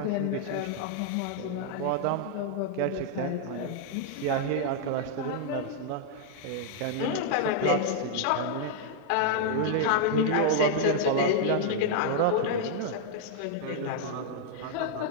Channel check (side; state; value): both; different; correlation -0.01